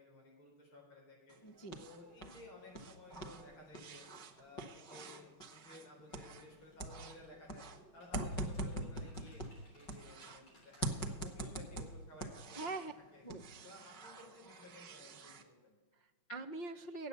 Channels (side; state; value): right; late; 5.5 ms